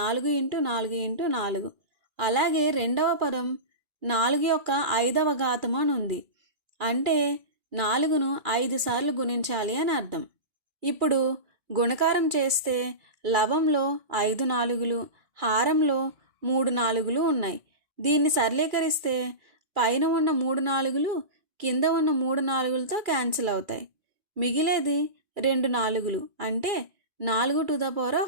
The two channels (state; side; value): late; left; 2.4 ms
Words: ఇంటూ 4 ఇంటూ 4. అలాగే రెండవ పదం 4 యొక్క 5వ ఘాతం అని ఉంది, అంటే 4ను 5 సార్లు గుణించాలి అని అర్థం. ఇప్పుడు గుణకారం చేస్తే లవంలో 5 4లు, హారంలో 3 4లు ఉన్నాయి. దీన్ని సరళీకరిస్తే పైన ఉన్న 3 4లు కింద ఉన్న 3 4లతో క్యాన్సిల్ అవుతాయి. మిగిలేది 2 4లు, అంటే